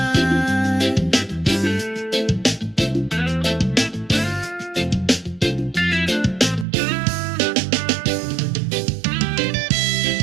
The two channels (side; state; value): left; drops out; at 6.7 s